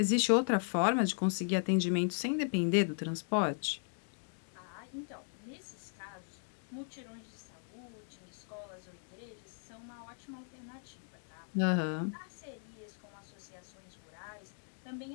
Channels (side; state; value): right; silent; 53 dB below the other